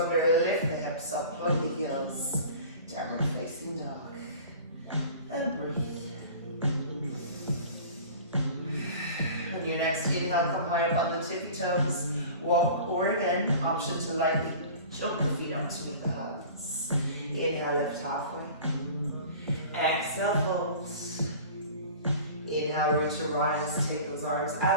lift the hips up, plug the heels, downward facing dog, and breathe. On your next inhale, come high up on the tippy toes, walk, or again, option to lightly jump the feet up to meet the hands. Inhale, lift halfway. Exhale, fold. Inhale, root to rise, take those arms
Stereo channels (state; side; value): inverted; both; correlation -0.41